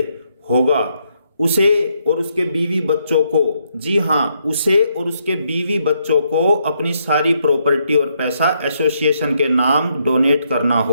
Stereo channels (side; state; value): both; inverted; correlation -0.75